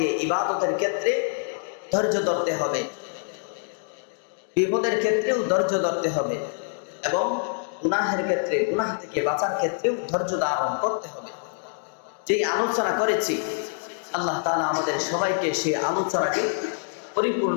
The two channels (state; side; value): silent; right; digital silence